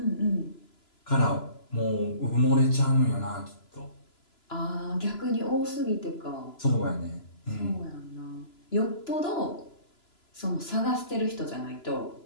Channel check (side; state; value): right; late; 3.0 ms